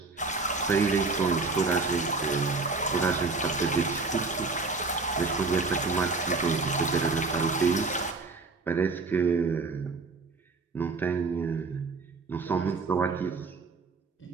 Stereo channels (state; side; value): quieter; left; 3.9 dB